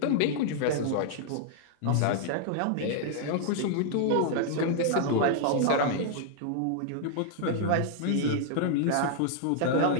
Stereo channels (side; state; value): both; different; correlation -0.01